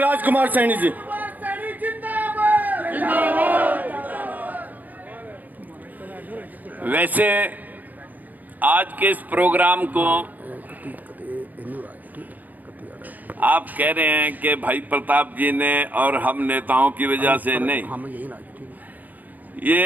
सैनी जी। वैसे आज के इस प्रोग्राम को आप कह रहे हैं कि भाई प्रताप जी ने और हम नेताओं की वजह से नहीं,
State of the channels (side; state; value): left; late; 0.082 ms